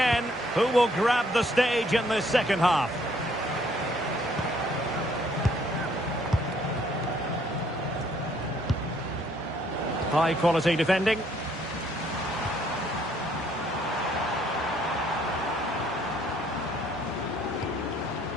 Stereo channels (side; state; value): both; normal; correlation 0.65